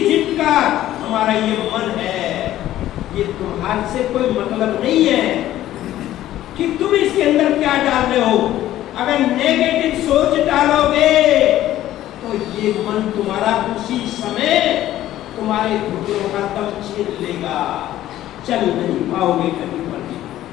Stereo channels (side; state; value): right; quieter; 13.6 dB